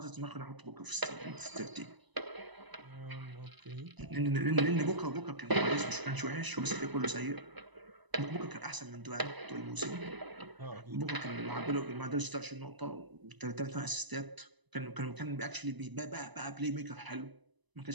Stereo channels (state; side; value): late; left; 1.0 ms